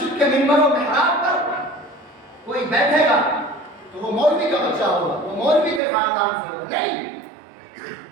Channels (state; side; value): drops out; left; at 5.8 s